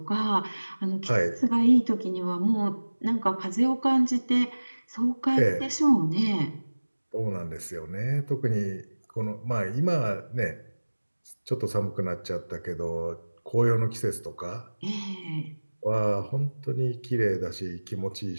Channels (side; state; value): both; inverted; correlation -1.00